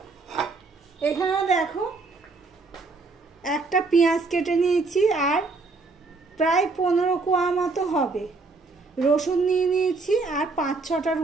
এখানে দেখো একটা পেঁয়াজ কেটে নিয়েছি, আর প্রায় 15 কোয়া মতো হবে রসুন নিয়ে নিয়েছি, আর 5-6টার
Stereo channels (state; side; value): quieter; left; 3.8 dB